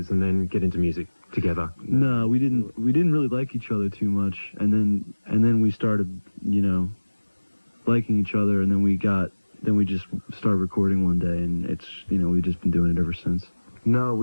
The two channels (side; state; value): both; inverted; correlation -1.00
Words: and then get into music together? No, we didn't really like each other too much, and then we started, you know, liking each other, and then we just started recording one day, and it's, you know, we've just been doing it ever since. No,